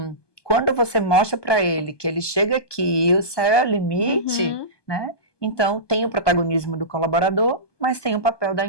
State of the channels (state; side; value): late; right; 1.2 ms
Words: quando você mostra para ele que ele chega aqui e o céu é o limite, né? Então, tem o protagonismo do colaborador, mas tem o papel da